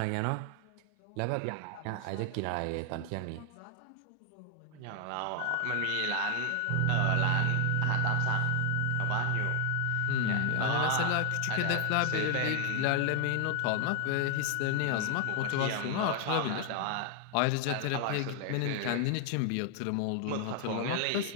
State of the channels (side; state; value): both; different; correlation 0.00